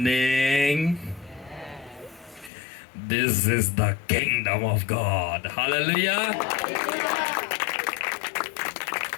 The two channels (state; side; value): drops out; right; at 2.5 s